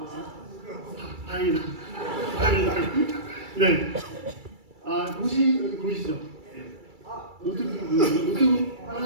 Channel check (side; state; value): left; late; 2.3 ms